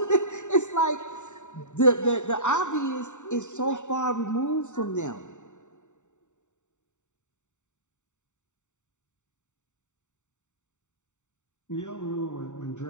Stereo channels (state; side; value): late; right; 0.84 ms